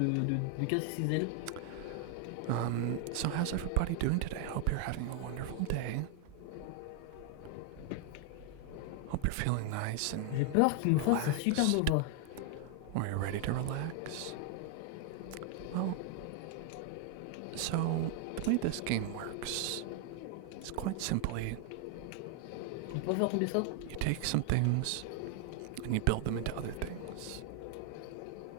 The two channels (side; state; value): both; different; correlation 0.00